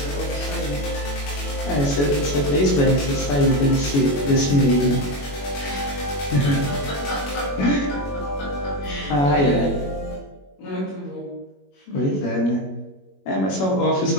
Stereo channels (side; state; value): right; late; 21 ms